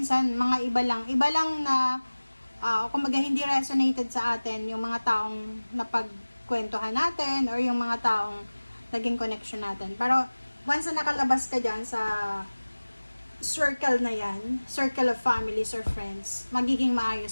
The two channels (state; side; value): inverted; both; correlation -1.00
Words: mga iba lang na, kumbaga hindi resonated sa atin yung mga taong napagkwentuhan natin or yung mga taong naging connection natin. Pero, once na nakalabas ka dyan sa circle na yan, circle of families or friends, magiging